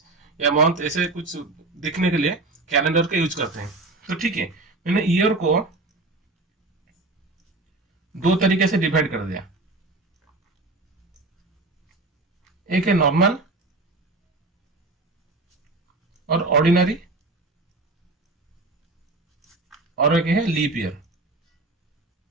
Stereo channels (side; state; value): left; quieter; 3.1 dB